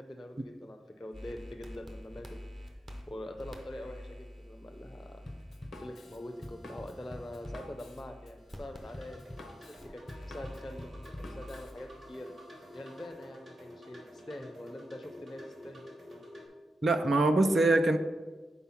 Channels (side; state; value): both; normal; correlation 0.86